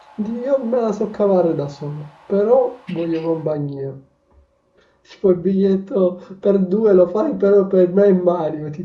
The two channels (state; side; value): identical; both; correlation 1.00